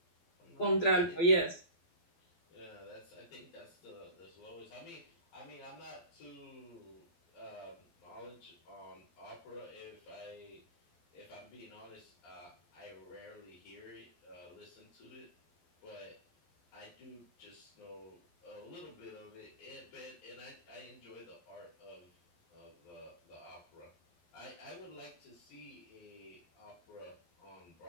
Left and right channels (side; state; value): right; late; 12 ms